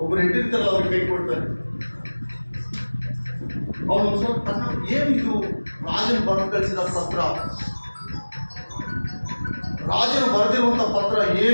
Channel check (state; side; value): inverted; both; correlation -1.00